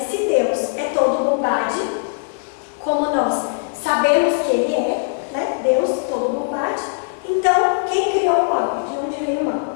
Se Deus é todo bondade, como nós sabemos que Ele é, né? Deus todo bondade, então quem criou o mal? De onde veio o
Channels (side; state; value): right; silent; digital silence